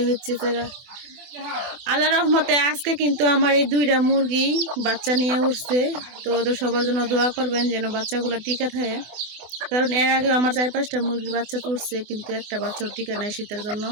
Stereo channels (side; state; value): left; late; 24 ms